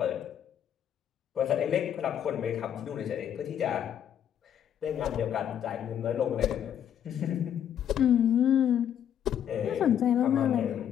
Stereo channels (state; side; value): quieter; right; 9.6 dB